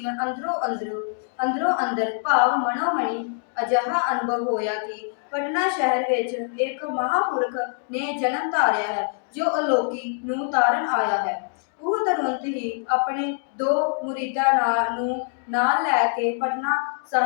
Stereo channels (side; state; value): right; silent; 60 dB below the other